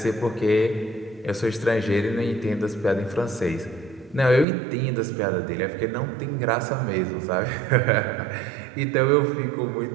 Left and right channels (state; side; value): drops out; left; at 4.5 s